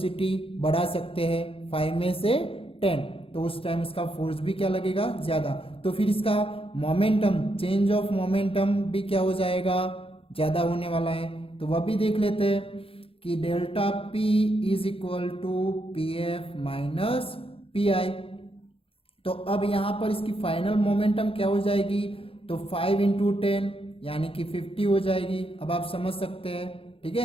बढ़ा सकते हैं 5 में से 10, तो उस टाइम उसका फोर्स भी क्या लगेगा? ज्यादा। तो फिर इसका मोमेंटम, चेंज ऑफ मोमेंटम भी क्या हो जाएगा? ज्यादा होने वाला है। तो वह भी देख लेते हैं कि delta P is equal to P F minus P I. तो अब यहाँ पर इसकी फाइनल मोमेंटम क्या हो जाएगी? तो 5 इंटू 10 यानी कि 50 हो जाएगी। अब आप समझ सकते हैं। ठीक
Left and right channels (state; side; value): late; right; 0.27 ms